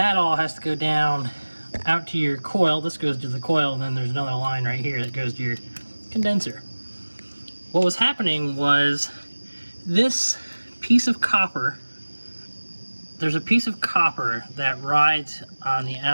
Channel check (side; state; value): both; inverted; correlation -1.00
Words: all has to go down out to your coil. This goes to the coil, and then there's another line right here that goes to your condenser. What was happening was this piece of copper, there's a piece of copper that rides on the